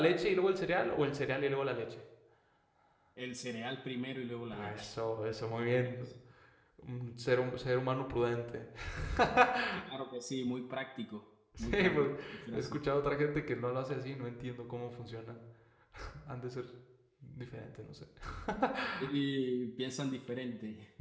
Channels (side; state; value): both; identical; correlation 1.00